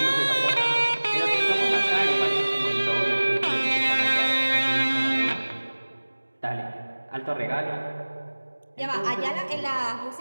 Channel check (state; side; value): inverted; both; correlation -1.00